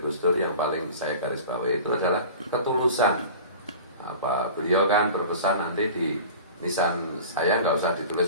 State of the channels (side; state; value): both; inverted; correlation -0.39